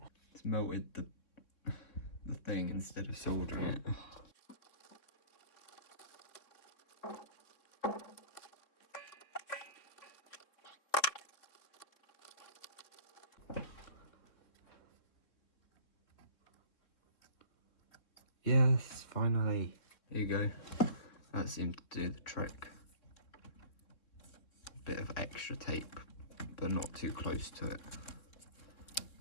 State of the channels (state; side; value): late; right; 3.6 ms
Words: It's melted the thing instead of soldering it. Yes, finally. There you go. That seemed to do the trick. A bit of extra tape, but not too close to it.